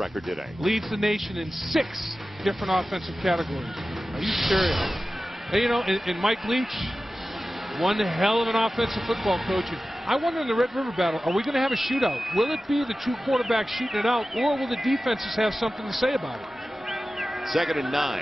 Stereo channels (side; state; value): both; normal; correlation 0.95